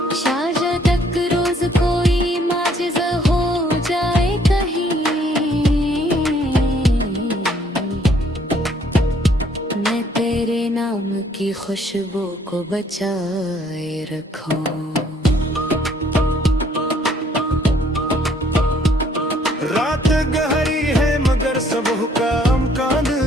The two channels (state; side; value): normal; both; correlation 0.63